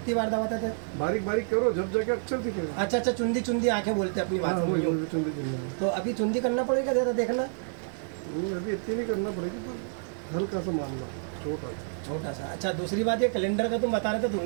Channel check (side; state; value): left; silent; digital silence